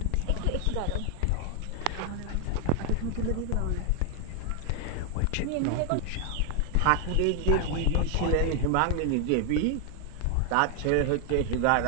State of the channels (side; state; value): both; different; correlation 0.00